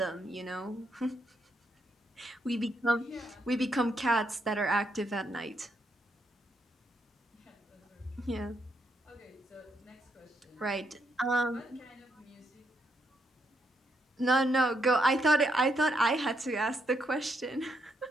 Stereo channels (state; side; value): normal; both; correlation 0.77